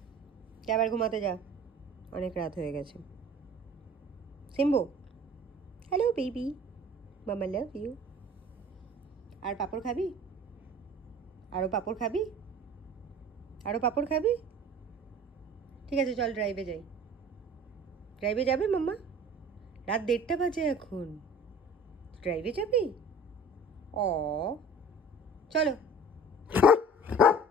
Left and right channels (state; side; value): normal; both; correlation 0.45